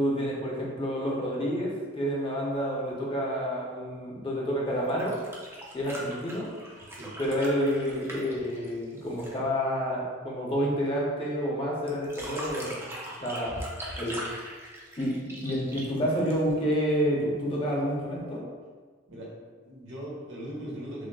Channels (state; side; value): normal; both; correlation 0.44